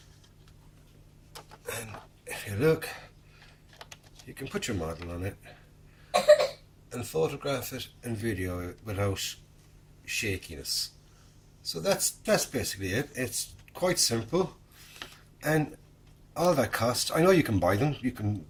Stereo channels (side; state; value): both; identical; correlation 1.00